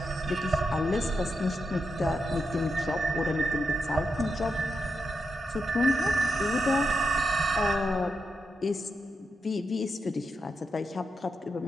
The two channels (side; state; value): both; normal; correlation 0.86